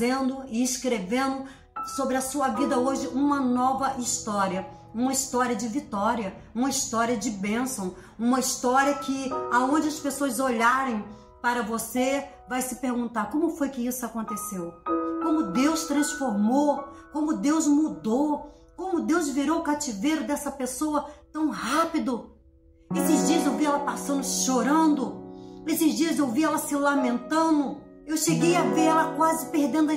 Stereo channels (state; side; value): identical; both; correlation 1.00